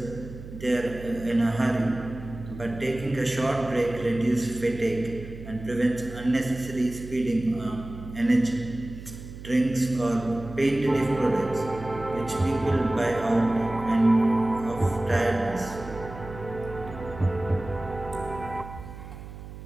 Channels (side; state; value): right; noise; hum, 13 dB below the sound